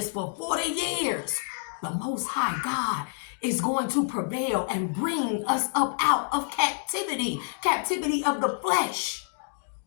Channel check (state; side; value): silent; right; digital silence